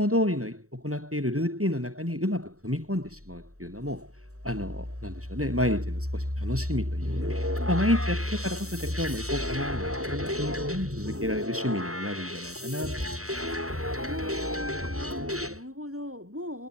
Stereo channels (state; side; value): late; left; 0.64 ms